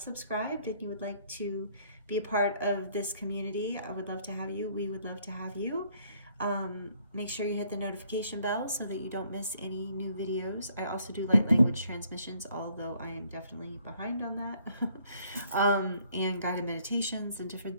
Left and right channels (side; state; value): both; inverted; correlation -0.65